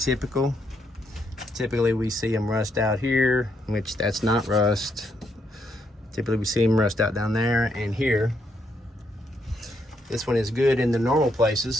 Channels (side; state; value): both; normal; correlation 0.76